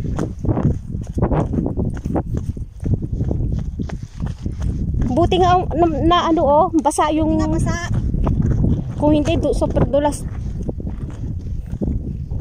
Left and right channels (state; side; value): identical; both; correlation 1.00